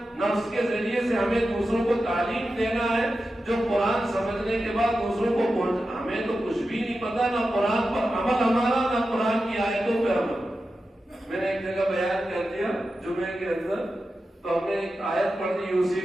نہ اس کے ذریعے سے ہمیں دوسروں کو تعلیم دینا ہے جو قرآن سمجھنے کے بعد دوسروں کو پہنچ۔ ہمیں تو کچھ بھی نہیں پتا، نہ قرآن پر عمل ہمارا، نہ قرآن کی آیتوں پہ عمل۔ میں نے ایک جگہ بیان کر دیا جمعے کے اندر، تو ہم نے ایک آیت پڑھ دی،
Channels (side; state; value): both; normal; correlation 0.91